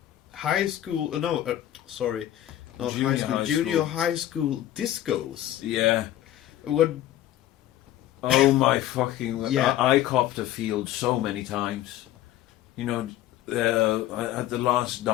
high school. Sorry, not Junior high school. high Junior school. high school discos. Yeah. What? Oh my fucking... Yeah. I copped a field so many times. You know, at the last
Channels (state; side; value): quieter; right; 13.0 dB